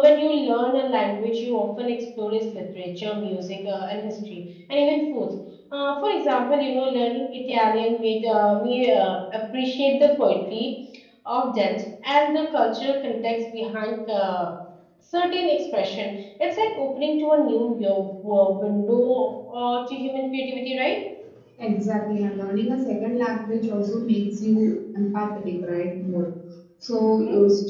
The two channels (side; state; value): both; identical; correlation 1.00